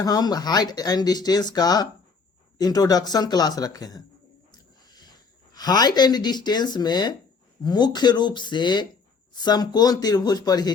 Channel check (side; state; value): right; quieter; 4.9 dB